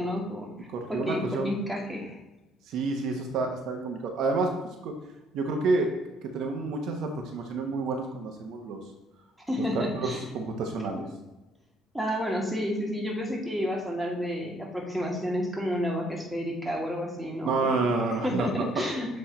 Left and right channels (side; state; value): both; normal; correlation 0.65